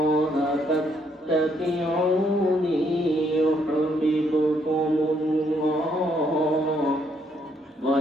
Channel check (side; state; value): both; normal; correlation 0.71